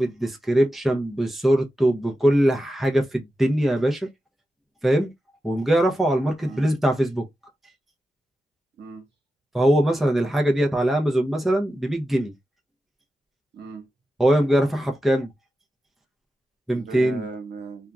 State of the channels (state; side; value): normal; both; correlation 0.91